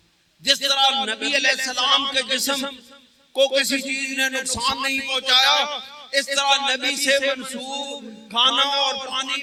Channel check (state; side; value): identical; both; correlation 1.00